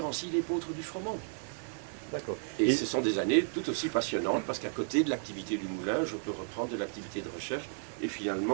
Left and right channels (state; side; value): silent; left; 56 dB below the other